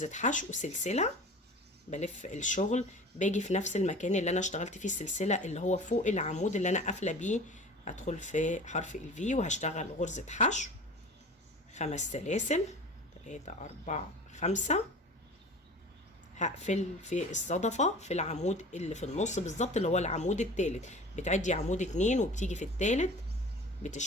حشو سلسلة. بلف الشغل باجي في نفس المكان اللي انا اشتغلت فيه السلسلة اللي هو فوق العمود اللي انا قافلة بيه، هدخل في حرف الفي وهشتغل غرزة حشو 5 سلاسل. 3 4 5. هقفل في الصدفة في العمود اللي في النص بالظبط اللي هو العمود التالت. بتعدي عمود 2 وبتيجي في التالت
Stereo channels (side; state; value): both; normal; correlation 0.40